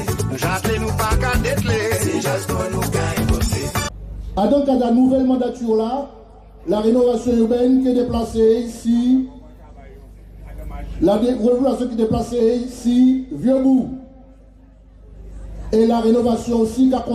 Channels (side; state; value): both; identical; correlation 1.00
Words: J'attends nous pas qu'à dételer. Si j'attends nous qu'à écouter. À donc à la nouvelle mandature là, la rénovation urbaine qui est déplacée ici, la rénovation qui est déplacée ici, Vieux-Bourg. Et la rénovation aussi qui a